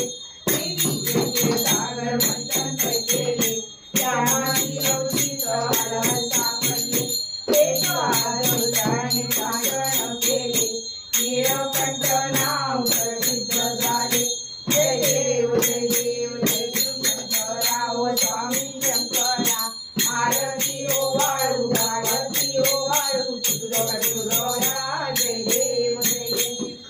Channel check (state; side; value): identical; both; correlation 1.00